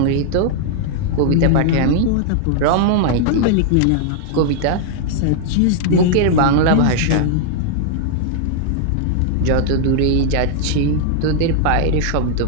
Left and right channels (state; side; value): different; both; correlation -0.01